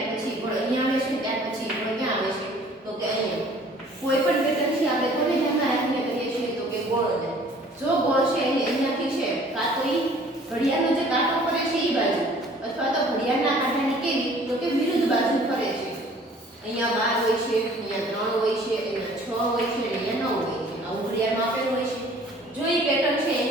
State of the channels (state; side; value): normal; both; correlation 0.53